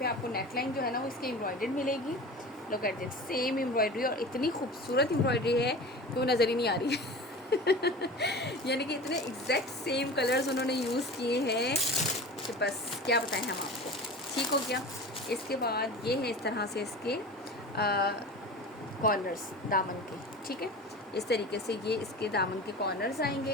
आपको नेकलाइन जो है ना वो इसकी एम्ब्रॉयडर्ड मिलेगी। Look at this, same embroidery, और इतनी खूबसूरत एम्ब्रॉयडरी है कि वो नज़र ही नहीं आ रही है। यानी कि इतने एग्जैक्ट सेम कलर्स उन्होंने यूज़ किए हैं कि बस क्या बताएं हम आपको। ठीक हो गया, इसके बाद ये है इस तरह से इसके कॉर्नर्स दामन के। ठीक है, इस तरीके से ये इसके दामन के कॉर्नर्स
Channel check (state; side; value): normal; both; correlation 0.35